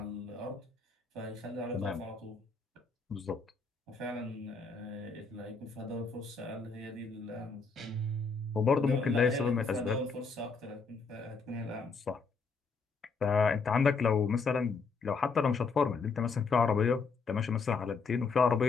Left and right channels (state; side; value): quieter; right; 4.6 dB